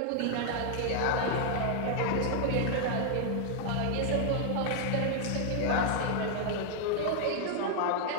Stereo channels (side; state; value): both; different; correlation 0.00